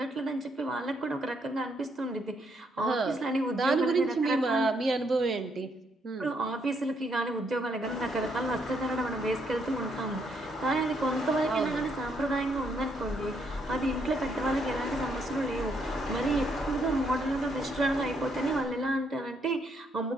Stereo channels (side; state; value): both; normal; correlation 0.74